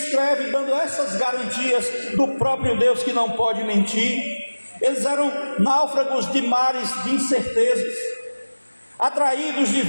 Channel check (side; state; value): both; inverted; correlation -1.00